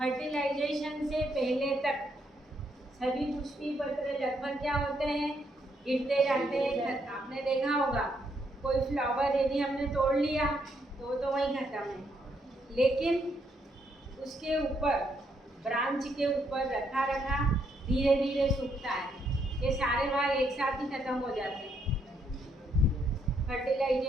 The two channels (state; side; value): normal; both; correlation 0.75